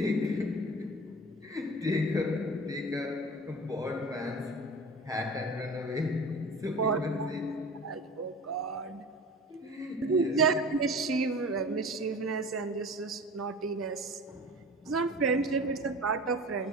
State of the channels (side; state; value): both; normal; correlation 0.37